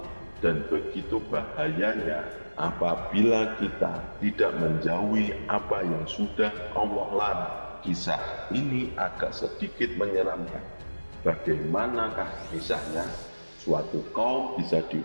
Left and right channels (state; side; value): inverted; both; correlation -1.00